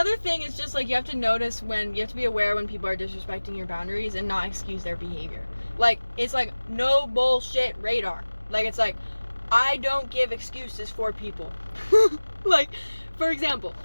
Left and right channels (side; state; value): both; inverted; correlation -1.00